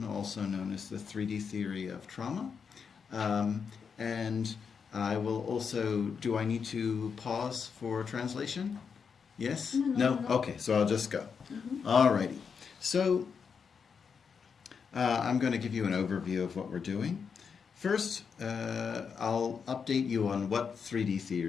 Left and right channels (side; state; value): right; quieter; 6.2 dB